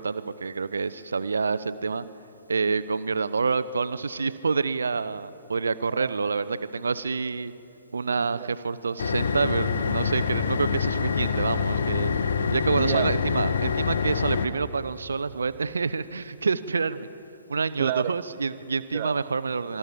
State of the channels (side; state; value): both; inverted; correlation -0.80